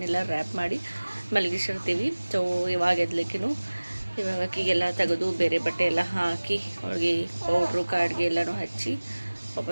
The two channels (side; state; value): both; inverted; correlation -1.00